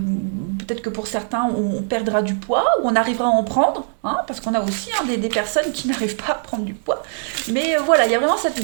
que pour certains, on perdra du poids ou on arrivera à en prendre, hein, parce qu'on a aussi des personnes qui n'arrivent pas à prendre du poids. Mais voilà, il y a vraiment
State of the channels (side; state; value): left; silent; digital silence